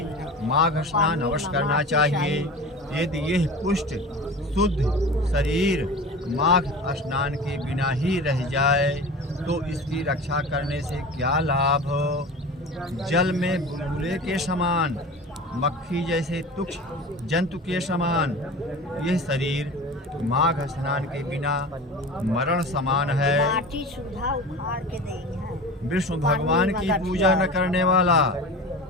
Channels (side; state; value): both; normal; correlation 0.34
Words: माघ स्नान अवश्य करना चाहिए। यदि यह पुष्ट शुद्ध शरीर माघ स्नान के बिना ही रह जाए तो इसकी रक्षा करने से क्या लाभ। जल में बुलबुले के समान, मक्खी जैसे तुक्ष जंतु के समान यह शरीर माघ स्नान के बिना मरण समान है। विष्णु भगवान की पूजा न करने वाला,